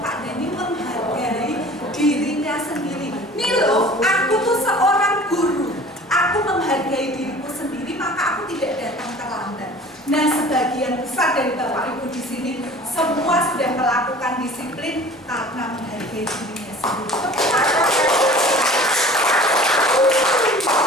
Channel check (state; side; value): normal; both; correlation 0.44